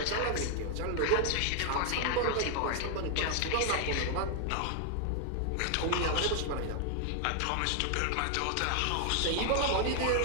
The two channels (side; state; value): both; different; correlation 0.00